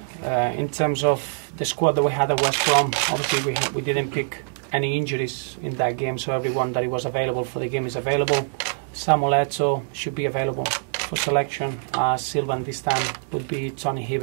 terms of the squad that we had at West Brom, obviously we didn't pick any injuries in that game, so everyone that was available for the game is available. Samuel Eto'o should be available for selection. Silvan this time would be Tony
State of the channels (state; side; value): silent; left; digital silence